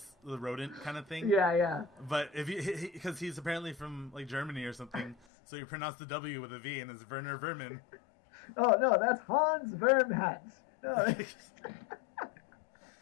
the rodent kind of thing. Yeah. But if because he's apparently from like Germany or something, so you pronounce the W with a V, and it's Werner Vermin. Oh no, that's Hans Vermhans. No.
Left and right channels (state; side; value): drops out; right; at 5.2 s